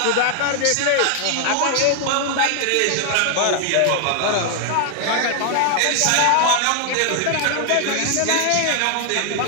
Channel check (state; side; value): different; both; correlation 0.00